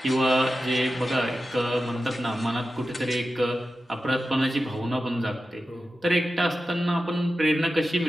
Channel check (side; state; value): both; normal; correlation 0.92